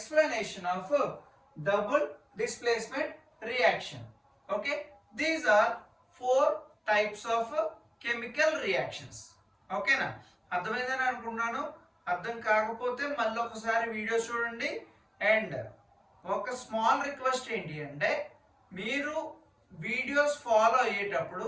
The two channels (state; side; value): identical; both; correlation 1.00